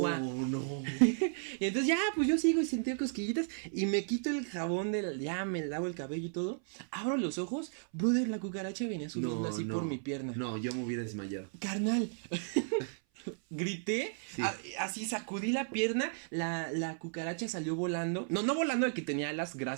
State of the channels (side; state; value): left; silent; 55 dB below the other